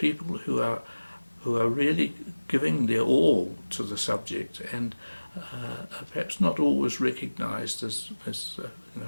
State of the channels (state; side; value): inverted; both; correlation -1.00